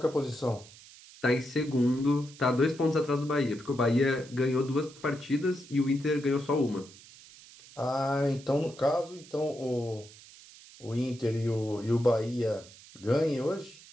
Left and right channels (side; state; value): right; noise; hiss, 21 dB below the sound